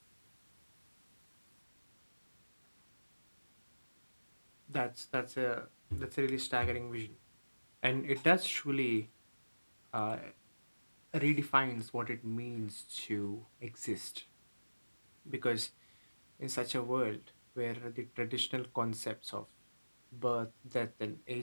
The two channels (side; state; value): both; inverted; correlation -1.00